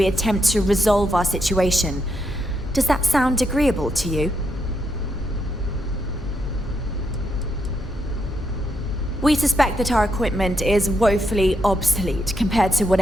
attempt to resolve our situation. Does that sound agreeable to you? We suspect that our equipment is woefully obsolete compared to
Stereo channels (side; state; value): both; normal; correlation 0.80